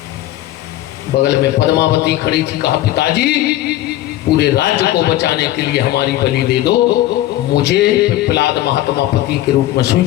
बगल में पद्मावती खड़ी थी। कहा पिताजी, पूरे राज्य को बचाने के लिए हमारी बलि दे दो, मुझे पिप्पलाद महात्मा पति के रूप में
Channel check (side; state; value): right; quieter; 14.7 dB